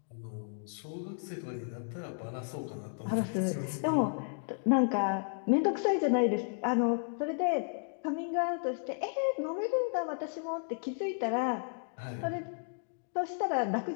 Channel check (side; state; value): right; silent; digital silence